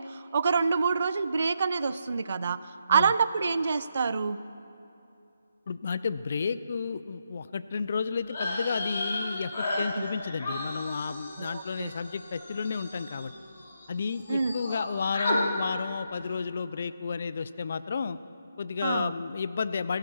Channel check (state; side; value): inverted; both; correlation -0.79